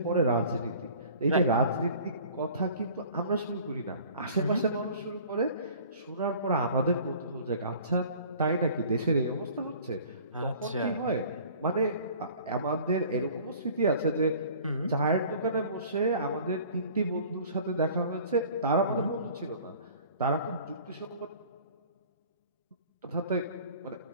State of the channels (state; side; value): inverted; both; correlation -0.48